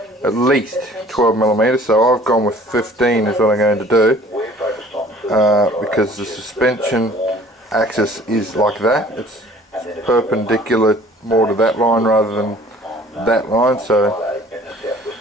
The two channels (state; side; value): normal; both; correlation 0.51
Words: at least 12mm. So I've gone with 15 is what I'm going to do, because the suspension axis is like that. It's perpendicular more to that line rather than that line, so